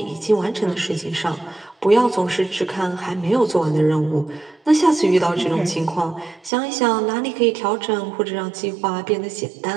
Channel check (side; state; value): left; drops out; at 6.5 s